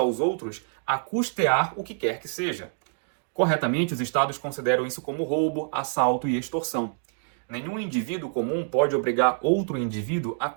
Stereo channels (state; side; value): silent; left; digital silence